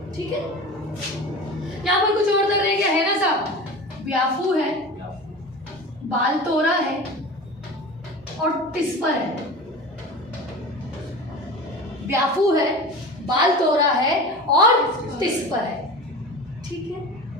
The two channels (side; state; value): both; normal; correlation 0.33